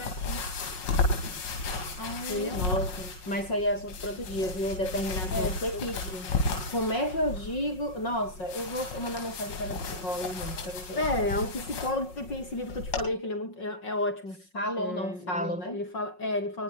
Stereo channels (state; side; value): late; right; 5.5 ms